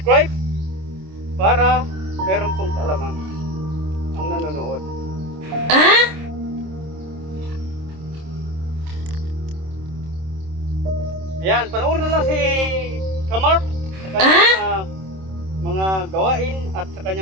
para meron pong kaalaman ang nanonood. Ayan, panoorin na lang si Kamark sa kanyang mga gawain at sa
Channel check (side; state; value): left; late; 26 ms